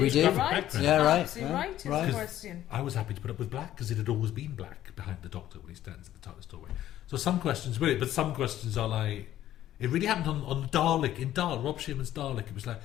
do. graphic Right. background. Yeah, right. Absolutely Yeah, right. Is right. the question. I was happy to put up with black because it had always been black behind the doctor when he stands at the TARDIS doorway. So some questions, really, but some questions are like, it really happened on Dalek, in Rob Shearman's Dalek. It was like,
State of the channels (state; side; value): quieter; right; 12.7 dB